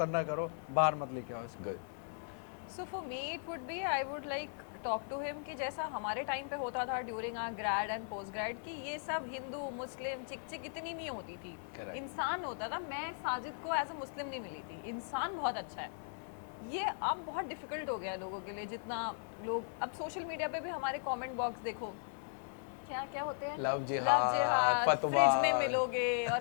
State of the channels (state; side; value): silent; right; 53 dB below the other